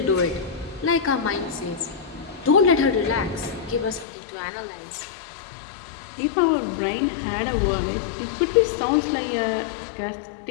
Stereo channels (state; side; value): drops out; right; at 4.0 s